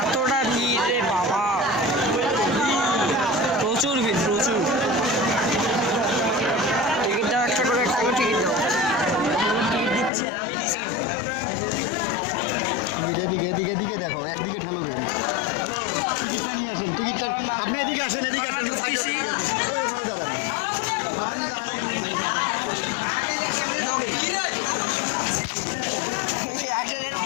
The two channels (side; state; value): right; drops out; at 10.1 s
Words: এতটা ভিড় রে বাবা, প্রচুর ভিড়, প্রচুর। টিকিট দাও, একটা করে টিকিট দাও। টিকিট দিচ্ছে, আমি দিচ্ছি। এদিকে এদিকে এদিকে দেখো, একদিকে ঠেলো কেন? টিকিটটা নিয়ে আসেন, টিকিটটা আপনি এদিকে আসেন, এদিকে আসেন। ঢুকতেছি। একজনের